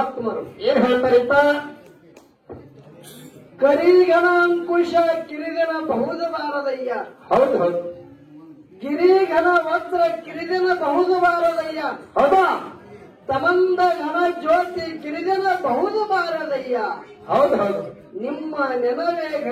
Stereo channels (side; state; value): both; identical; correlation 1.00